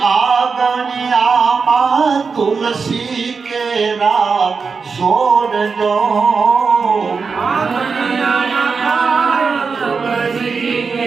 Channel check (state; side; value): quieter; left; 5.1 dB